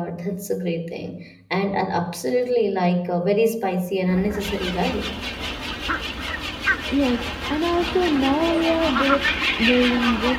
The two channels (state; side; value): identical; both; correlation 1.00